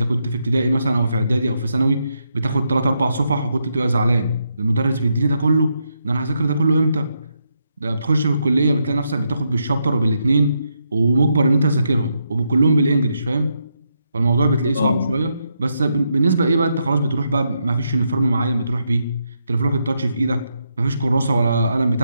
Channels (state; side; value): inverted; both; correlation -0.81